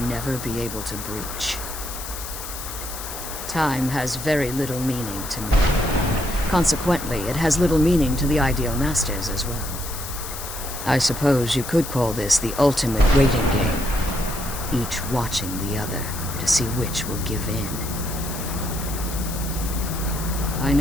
never be able to breach. Time has very little meaning to me. Consequently, it has little meaning to the Ideal Masters as well. I suppose you could call this the ultimate waiting game, each watching the other to see which will give in. I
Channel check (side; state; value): left; noise; hiss, 9 dB below the sound